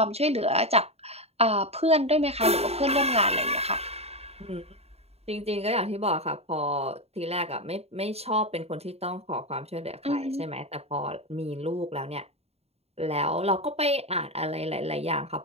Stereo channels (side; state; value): left; late; 0.30 ms